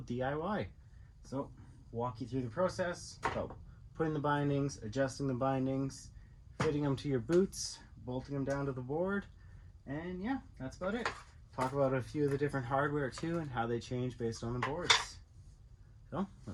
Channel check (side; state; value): both; identical; correlation 1.00